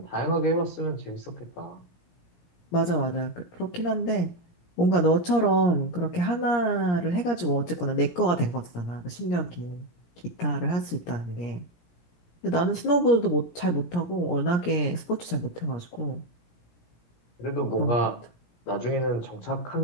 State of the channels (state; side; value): late; right; 17 ms